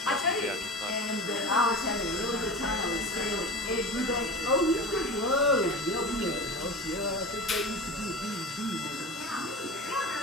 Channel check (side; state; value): both; normal; correlation 0.30